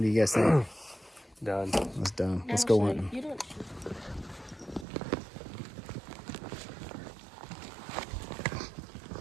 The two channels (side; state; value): left; drops out; at 4.9 s